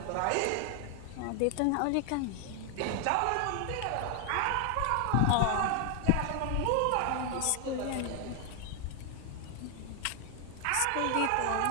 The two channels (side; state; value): both; different; correlation 0.00